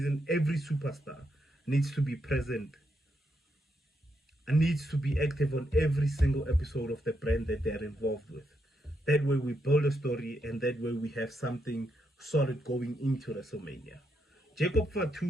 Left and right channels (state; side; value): normal; both; correlation 0.80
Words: every superstar needs to be present and needs to be active on every single episode of the brand that they're involved with. That way we build a story, and that way we have something solid going into WrestleMania. Jacob